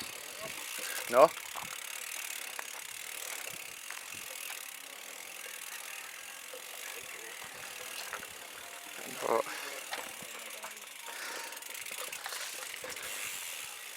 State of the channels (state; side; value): identical; both; correlation 1.00